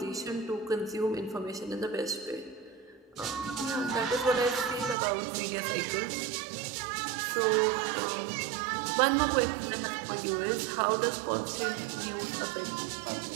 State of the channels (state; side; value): drops out; left; at 5.0 s